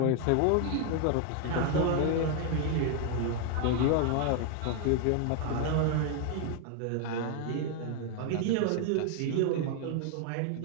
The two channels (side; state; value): both; different; correlation 0.01